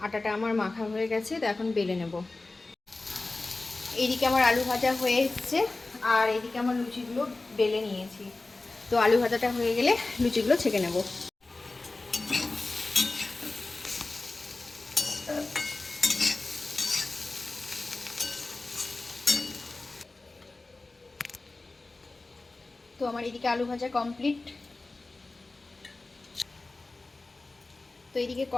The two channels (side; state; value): right; quieter; 3.3 dB